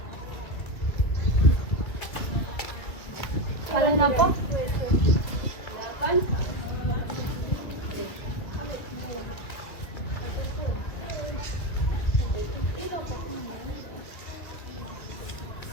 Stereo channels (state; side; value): late; right; 2.5 ms